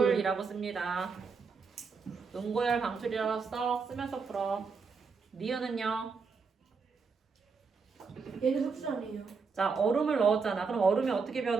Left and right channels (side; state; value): left; quieter; 5.0 dB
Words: 씁니다. 응고열 방출이라고 쓰면서 풀어. 니은은요? 얘는 흡수 아니에요. 자, 얼음을 넣었잖아. 그럼 얼음이 어떻게